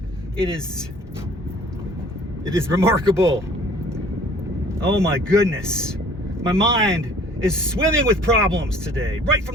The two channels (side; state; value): both; normal; correlation 0.53